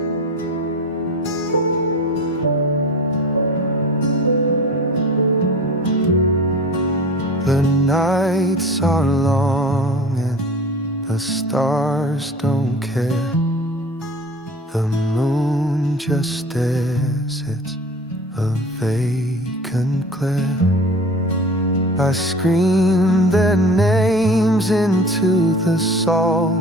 The nights are long and the stars don't care. The moon just stares, it's a vacant glare. I scream their names into the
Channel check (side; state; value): both; normal; correlation 0.39